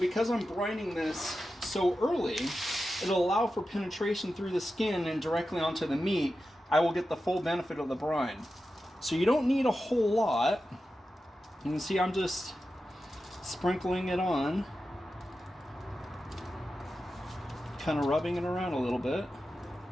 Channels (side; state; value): both; normal; correlation 0.92